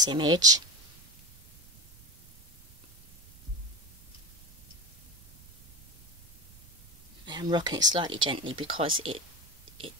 image. I'm rocking it slightly gently because it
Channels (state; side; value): noise; right; rumble, 26 dB below the sound